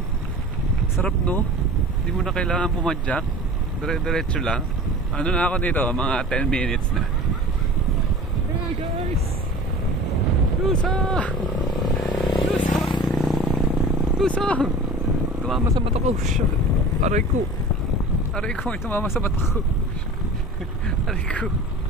Sarap, no? Hindi mo na kailangan pumadyak. Dire-diretso lang. Ano na ako dito? Mga 10 minutes na. Hey guys! Lusong! Lusong! Lusong! Tumama sa mata ko. Aray ko. Aray ko, may tumama sa mata ko. Aray ko.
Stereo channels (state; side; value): normal; both; correlation 0.39